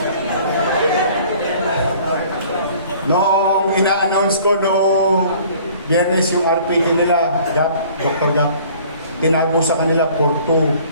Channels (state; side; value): inverted; both; correlation -0.52